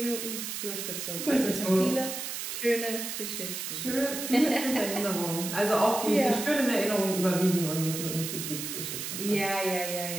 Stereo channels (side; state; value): right; noise; hiss, 5 dB below the sound